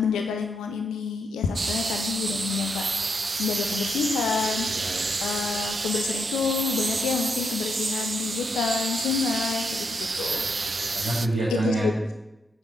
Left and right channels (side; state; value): both; normal; correlation 0.80